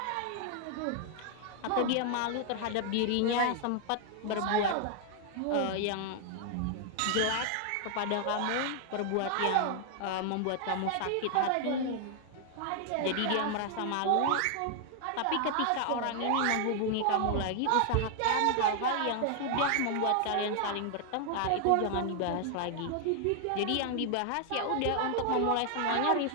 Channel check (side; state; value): both; different; correlation 0.00